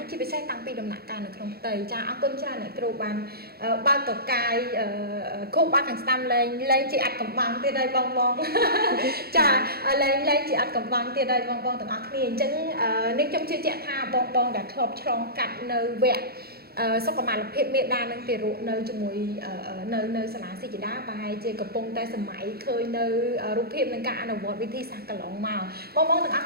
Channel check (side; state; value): left; late; 0.45 ms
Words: chỉ phải xe tăng pi đầm nặng càng được không tầy cha áo quân cha này kêu bàn bao tổ cài khúc ba thằng stam lên chị ăn cầm bằng tiền đây bong bong cha lên chị ăn cầm bằng tiền đây bong bong tận ác liền chẳng nếu trong chưa chạy tha bong bong đã khớp trong cắt nơi vẹn sau có mà lập hiện miệng đa năng tiền ruộng nơi cho mùi nơi sản xuất chỉ đá bài chơi cặp bông tay sầm máy khơi nơi rụp hiện nâng cả nào vọt với thi sạc cả lỏng màu bong bong từng